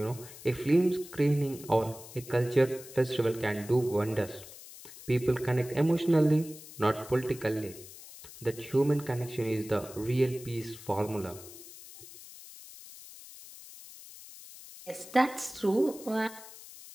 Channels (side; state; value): left; noise; hiss, 17 dB below the sound